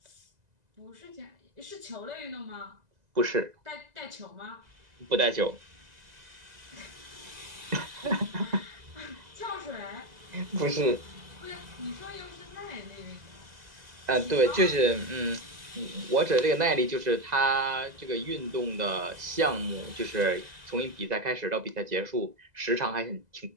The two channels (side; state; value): left; late; 2.0 ms